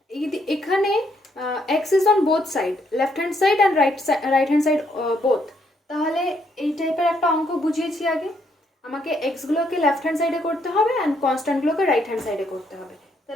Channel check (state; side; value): normal; both; correlation 0.73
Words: এখানে x is on both side, left hand side and right hand side both। তাহলে এই টাইপের একটা অঙ্ক বুঝিয়েছি আগে, আমাকে x গুলোকে লেফট হ্যান্ড সাইডে করতে হবে অ্যান্ড কনস্ট্যান্ট গুলোকে রাইট হ্যান্ড সাইডে করতে হবে।